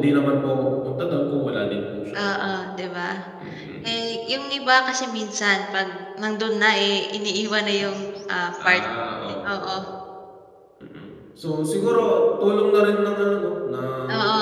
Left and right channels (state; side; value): identical; both; correlation 1.00